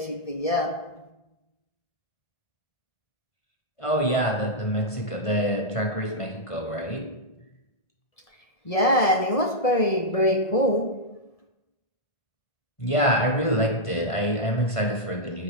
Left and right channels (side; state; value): right; late; 1.7 ms